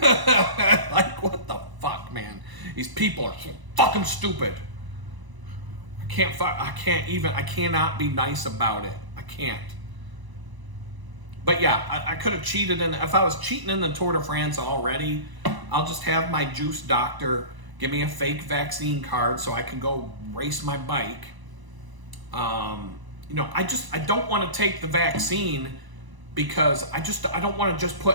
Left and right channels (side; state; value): left; late; 1.0 ms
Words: what the fuck, man? These people are so fucking stupid. I cannot be nice about it. I can't. But yeah, I could have cheated if I was cheating in the Tour de France already, I'll just have my juice doctor give me a fake vaccine card so I can go race my bike. I don't want to take the vaccine because I don't want to just